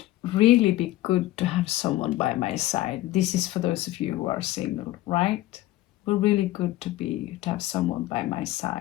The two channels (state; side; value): quieter; right; 16.2 dB